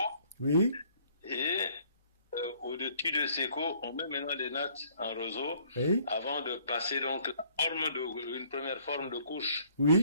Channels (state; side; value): inverted; both; correlation -0.61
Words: Oui. Et au-dessus de sécos, on met maintenant des nattes en roseau. Oui. Avant de passer donc une première forme de couche.